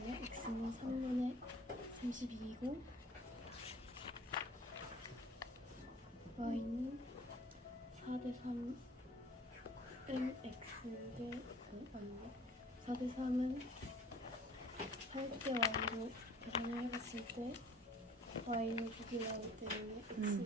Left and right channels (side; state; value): both; normal; correlation 0.50